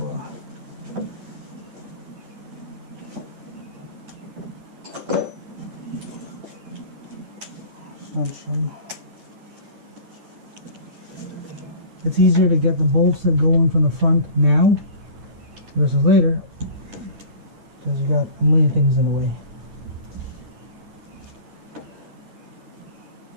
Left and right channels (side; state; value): left; late; 9.8 ms